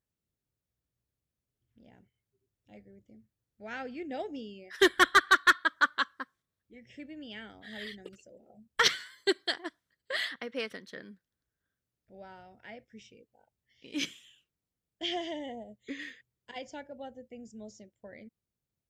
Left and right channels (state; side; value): identical; both; correlation 1.00